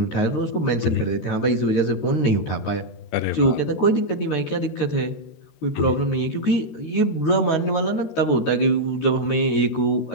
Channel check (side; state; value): right; late; 13 ms